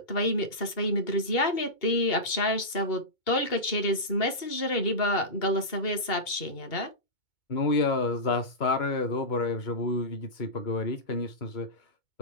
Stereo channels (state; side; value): late; right; 2.2 ms